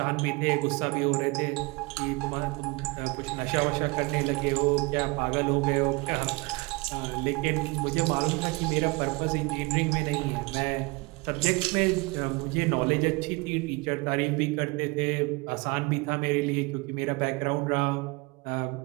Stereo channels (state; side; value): quieter; left; 25.7 dB